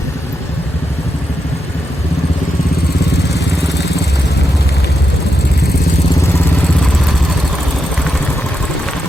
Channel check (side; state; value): both; normal; correlation 0.85